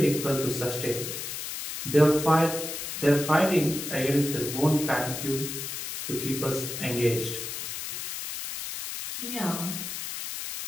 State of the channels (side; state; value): left; noise; hiss, 6 dB below the sound